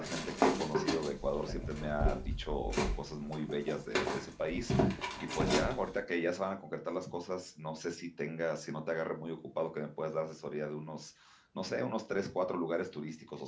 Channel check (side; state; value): both; identical; correlation 1.00